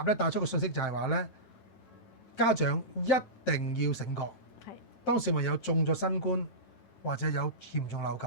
帶出個信息就係話咧，家長一定要醒覺。係。當小朋友中咗新冠或者有嚴重流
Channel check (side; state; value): right; late; 9.1 ms